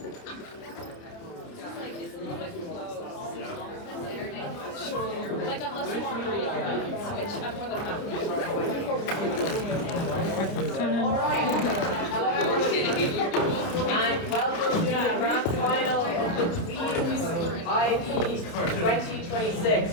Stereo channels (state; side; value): late; right; 29 ms